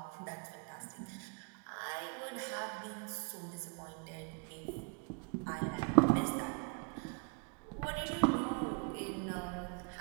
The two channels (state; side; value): quieter; left; 35.5 dB